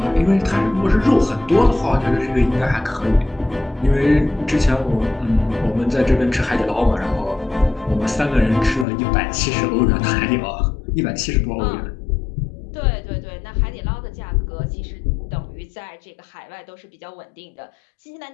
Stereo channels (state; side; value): drops out; right; at 8.8 s